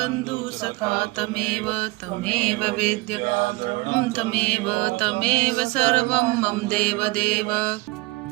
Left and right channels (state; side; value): quieter; left; 22.9 dB